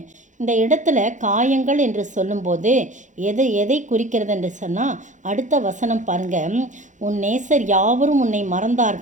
இந்த இடத்துல காயங்கள் என்று சொல்லும்போது எதை குறிக்கிறது என்று சொன்னால், அடுத்த வசனம் பாருங்க. உன் நேசர் யாவரும் உன்னை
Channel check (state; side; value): late; left; 0.36 ms